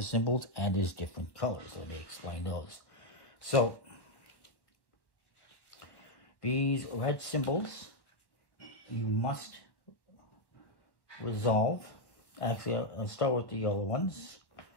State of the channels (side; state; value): right; late; 1.1 ms